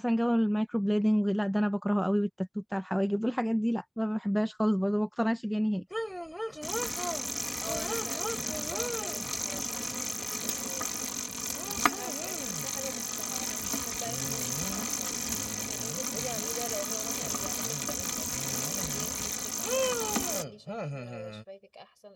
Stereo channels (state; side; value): identical; both; correlation 1.00